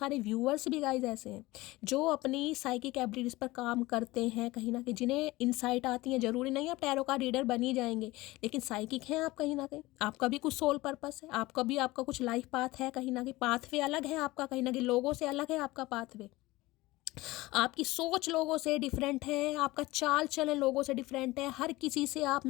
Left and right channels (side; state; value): right; quieter; 19.7 dB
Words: व्यूअर्स भी गाइस ऐसे हैं जो अपनी साइकिक एबिलिटीज पर काम करते हैं कहीं ना कहीं, जिन्हें इनसाइट आती है। जरूरी नहीं है आप टैरो का रीडर बन ही जाएंगे, लेकिन साइकिक हैं आप कहीं ना कहीं। आपका भी कुछ सोल पर्पस है, आपका कुछ लाइफ पाथ है कहीं ना कहीं। पाथवे अलग है आपका कहीं ना कहीं, लोगों से अलग है आपका पाथवे। आपकी सोच लोगों से डिफरेंट है, आपका चाल चलन लोगों से डिफरेंट है। हर किसी से आप